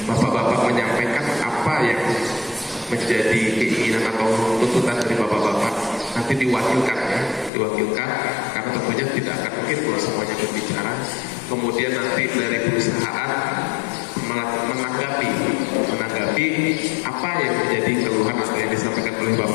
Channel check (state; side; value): drops out; right; at 7.5 s